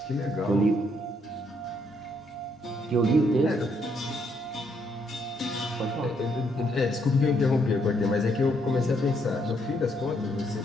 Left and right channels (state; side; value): normal; both; correlation 0.73